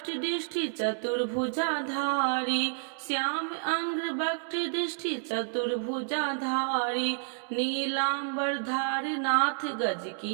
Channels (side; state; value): left; silent; 58 dB below the other